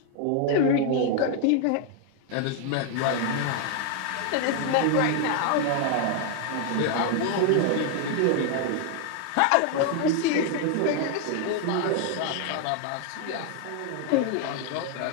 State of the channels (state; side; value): different; both; correlation 0.00